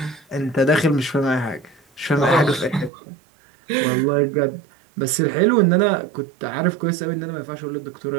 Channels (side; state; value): left; drops out; at 2.9 s